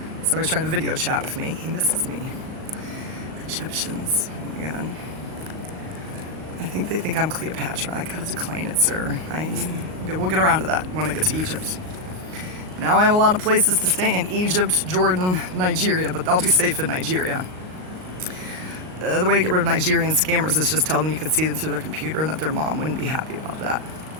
Somebody's trying to video chat with me. He misses me. Egyptians. Oh my God. I think they think I'm Cleopatra. I gotta decline it, sir. We'll get around to that when I get to Egypt. Now I have a lot of places to stay in Egypt, Jordan, Nigeria, but I'll be safe in Nigeria. The way to get rid of Nigerian scammers is just tell them you can see them through their computer and that their mom wouldn't be happy about that.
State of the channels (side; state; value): left; late; 38 ms